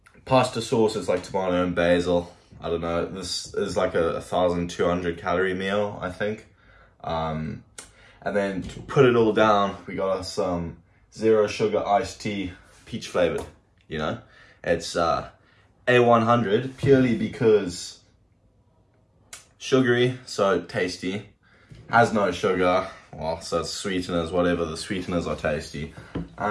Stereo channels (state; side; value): identical; both; correlation 1.00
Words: pasta sauce is like tomato and basil. I don't know, this is like a 1,200 calorie meal, I think. And then to put it all down, we got some 0 sugar iced tea, peach flavored, you know. It's A100 purely because sugary, so tasty, has no sugar, well, so it's sweeteners, whatever, the sweeteners are tasty,